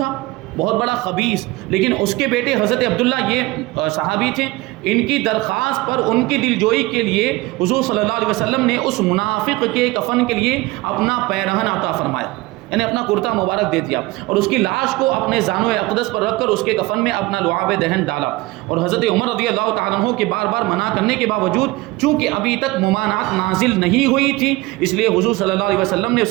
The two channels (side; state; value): left; quieter; 20.5 dB